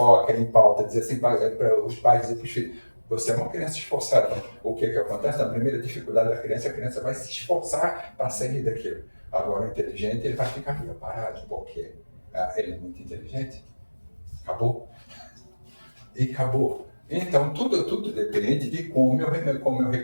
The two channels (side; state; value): both; inverted; correlation -1.00